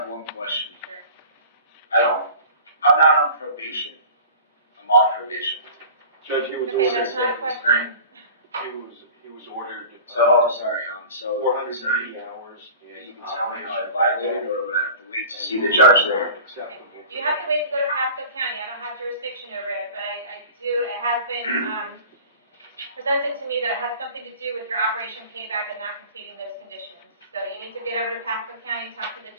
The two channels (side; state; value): both; inverted; correlation -0.40